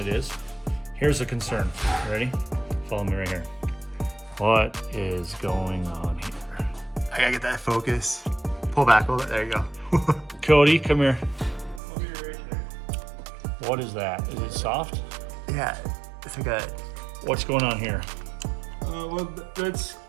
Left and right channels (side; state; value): left; drops out; at 11.8 s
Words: is. Here's the concern. You ready? Follow me right here. What is going on here? I gotta get that focus. Pull back a little bit. There you go. Cody, come here. What is that? Is it soft? Yeah, it's like a... What's going on here? Well, that's